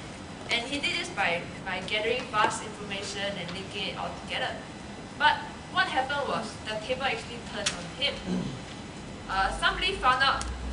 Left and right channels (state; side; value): identical; both; correlation 1.00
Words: and he did this by gathering vast information and linking it all together. But what happened was the table actually turned on him.